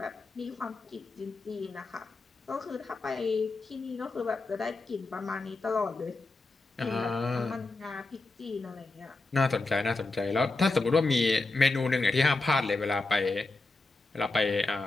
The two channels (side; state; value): right; quieter; 3.3 dB